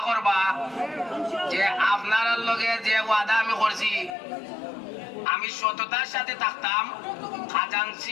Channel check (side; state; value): right; drops out; at 4.2 s